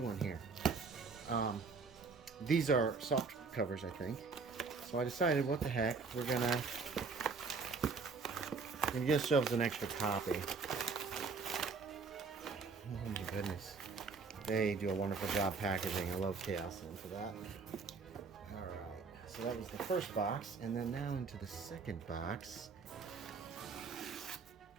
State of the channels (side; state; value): left; quieter; 4.7 dB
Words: here. These are soft covers, I think. So I decided, what the heck, we're gonna get ourselves an extra copy. Oh my goodness. They do a wonderful job packaging. I love Chaosium for that. Alright, so that was the first box, and then now into the second box.